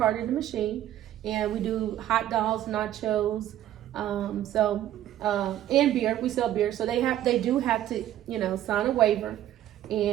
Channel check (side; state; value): left; quieter; 12.5 dB